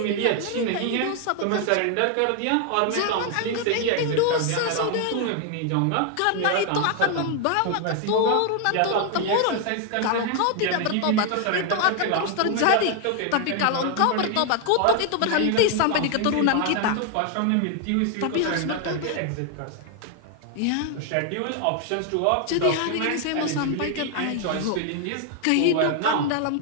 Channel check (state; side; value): different; both; correlation 0.00